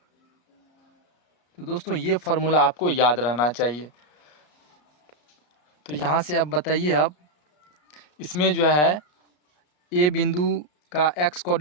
तो दोस्तों ये फार्मूला आपको याद रहना चाहिए। तो यहाँ से अब बताइए, अब इसमें जो है ए बिंदु का x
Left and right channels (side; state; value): right; late; 34 ms